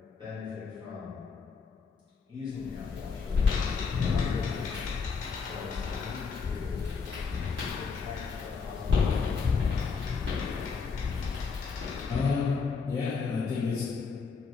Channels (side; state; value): right; quieter; 5.2 dB